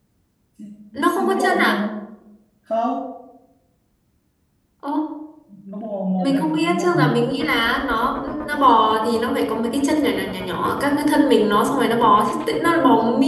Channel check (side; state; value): both; identical; correlation 1.00